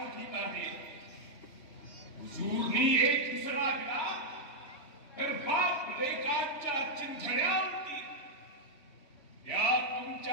आहे. हुजूरनी एक इसरा दिला तर बाप लेकांच्या चिंधड्या उडतील. या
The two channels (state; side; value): late; right; 3.2 ms